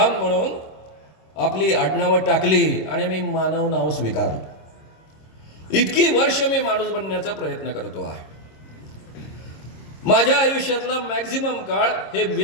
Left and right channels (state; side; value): late; right; 26 ms